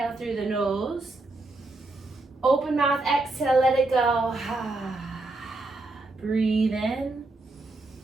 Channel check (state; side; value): quieter; left; 3.1 dB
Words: through the nose. Open mouth, exhale, let it go. Breathe in